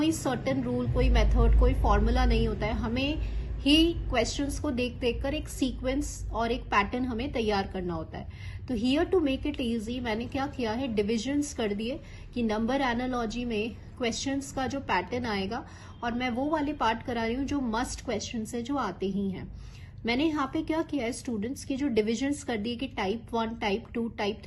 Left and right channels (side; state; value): both; identical; correlation 1.00